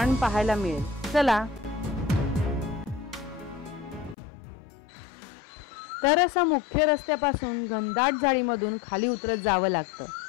पाहायला मिळेल। चला तर असं मुख्य रस्त्यापासून घनदाट झाडीमधून खाली उतरत जावं लागतं।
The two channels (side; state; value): right; drops out; at 4.2 s